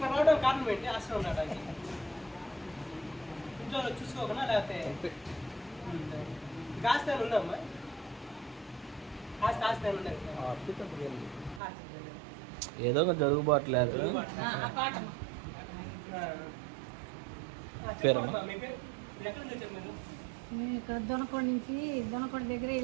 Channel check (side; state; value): left; drops out; at 11.6 s